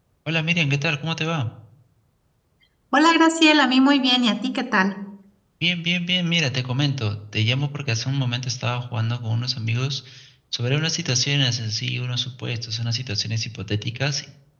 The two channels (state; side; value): identical; both; correlation 1.00